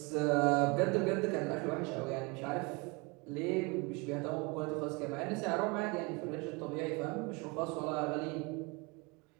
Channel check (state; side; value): quieter; left; 28.4 dB